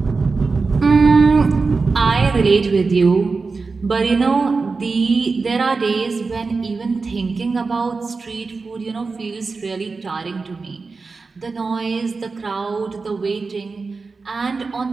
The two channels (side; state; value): left; quieter; 4.2 dB